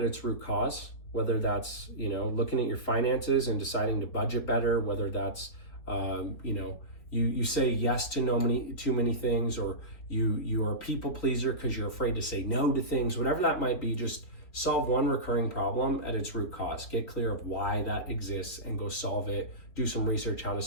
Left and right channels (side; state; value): right; late; 4.1 ms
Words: its root cause, whether that's, you know, looking at your finances and deciding to budget better, whether that's, you know, you say yes to too many things, or you are a people pleaser because you're afraid to say no to things, whatever that might be. Just solve one recurring problem at its root cause. Get clear of why that exists and go solve it. Do some research how to